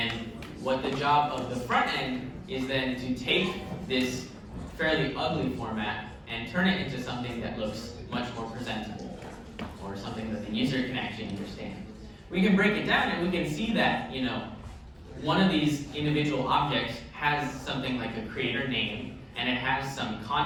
what the job of the front end is then to take this fairly ugly format and turn it into something that looks much more presentable, or something that the user can actually understand. We can break it down and we can see that, you know, one of these individual objects has something like a creator name, and it has some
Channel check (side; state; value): both; identical; correlation 1.00